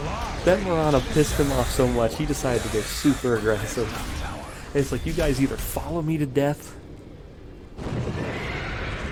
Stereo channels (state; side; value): identical; both; correlation 1.00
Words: That Mirana pissed him off so much, he decided to go super aggressive. And it's like, you guys either follow me to death,